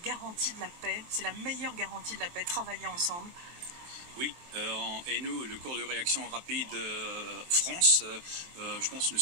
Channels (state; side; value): late; left; 23 ms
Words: garantie de la paix, c'est la meilleure garantie de la paix, travailler ensemble. Oui, et nous, le corps de réaction rapide France, je pense que nous